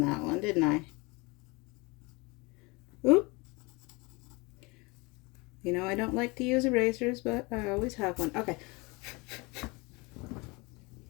that one, didn't I? Oop. You know, I don't like to use erasers, but I always have one. Okay.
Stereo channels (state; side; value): quieter; right; 26.7 dB